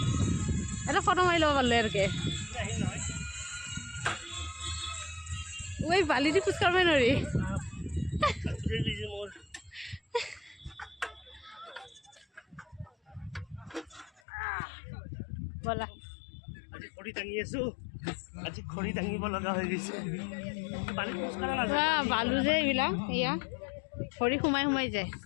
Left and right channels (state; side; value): drops out; right; at 14.2 s